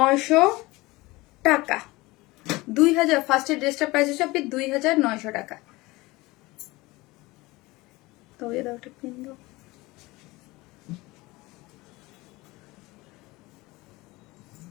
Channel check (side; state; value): right; quieter; 21.3 dB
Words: টাকা। 2000, ফার্স্টের ড্রেসটার প্রাইস হচ্ছে আপনি 2900 টাকা। তো এই দাও একটা পিন দাও।